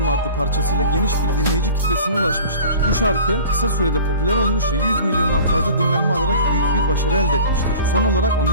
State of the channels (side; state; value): both; inverted; correlation -0.41